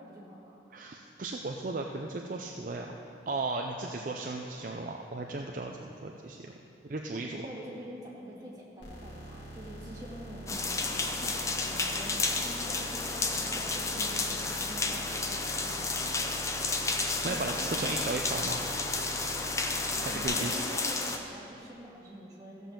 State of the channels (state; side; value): normal; both; correlation 0.12